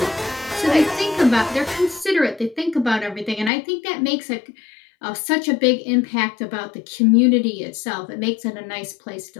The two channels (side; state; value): right; drops out; at 3.5 s